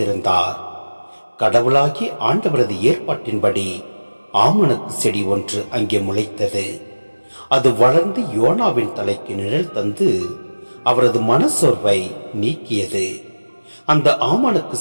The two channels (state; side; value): inverted; both; correlation -1.00